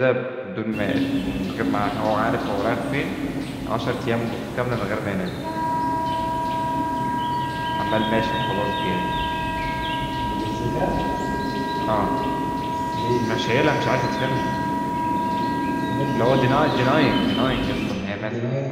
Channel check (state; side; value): identical; both; correlation 1.00